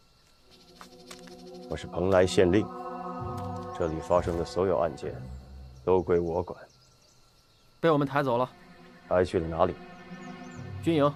我是蓬莱县令，这里发生的所有案件都归我管。被我们抬走了。抬去了哪里？军营。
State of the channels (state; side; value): identical; both; correlation 1.00